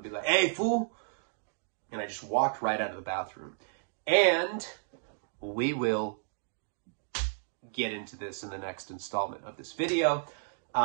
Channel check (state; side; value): silent; left; digital silence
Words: be like, hey, fool. And I just walked right out of the bathroom. And we will get into this in the next installment of this video.